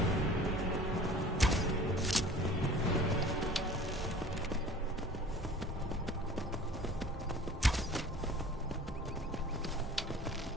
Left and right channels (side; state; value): both; normal; correlation 0.45